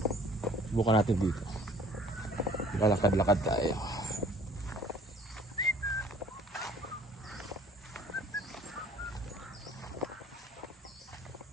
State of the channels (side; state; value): both; normal; correlation 0.53